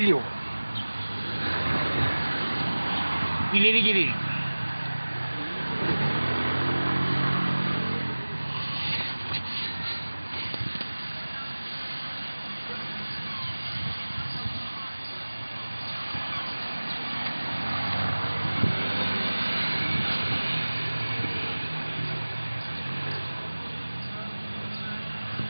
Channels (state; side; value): inverted; both; correlation -1.00